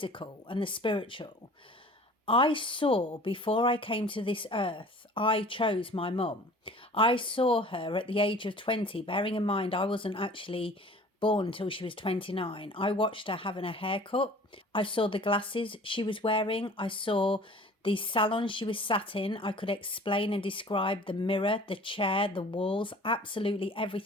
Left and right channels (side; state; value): both; normal; correlation 0.46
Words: and the spiritual, I saw, before I came to this earth, I chose my mum. I saw her at the age of 20, bearing in mind I wasn't actually born till she was 29. I watched her having a haircut. I saw the glasses she was wearing. I saw the salon she was sat in. I could explain and describe the mirror, the chair, the walls, absolutely